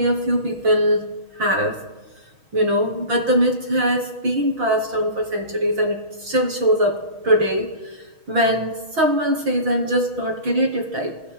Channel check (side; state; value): left; late; 6.3 ms